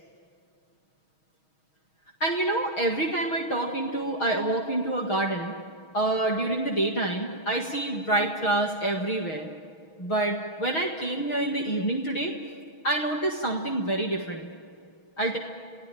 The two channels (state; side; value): late; right; 6.3 ms